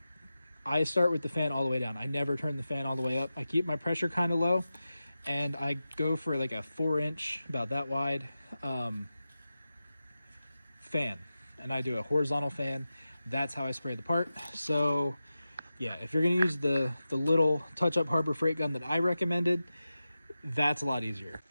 I start with the fan all the way down. I never turn the fan all the way up. I keep my pressure kind of low, and I go for like a 4-inch, about that wide, fan. And I do a horizontal fan. That's how I spray the part. So yeah, if you're going to use the little touch-up Harbor Freight gun that I recommended, that's a lot easier.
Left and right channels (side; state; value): both; inverted; correlation -0.93